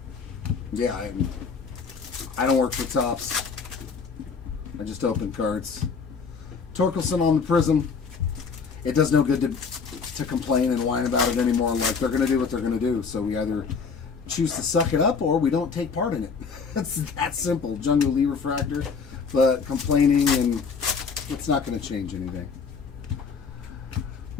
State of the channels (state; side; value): quieter; right; 5.4 dB